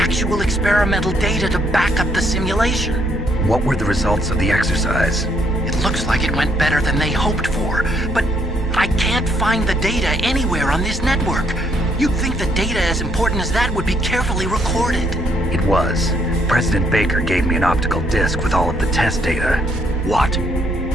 experimental data to back up the simulation. What were the results of the exercise? It looks like it went better than they hoped for, but I can't find the data anywhere on this network. You'd think the data as important as that would be carefully recorded. It was. President Baker gave me an optical disc with all of the test data. What?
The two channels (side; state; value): both; normal; correlation 0.70